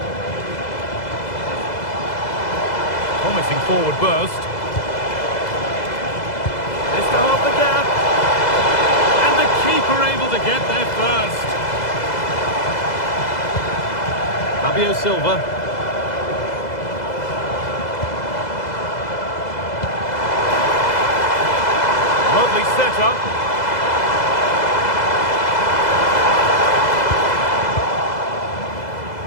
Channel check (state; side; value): late; right; 2.0 ms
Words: promising forward burst. Just to half the gap. And the keeper able to get there first. Fabio Silva. Lovely setup.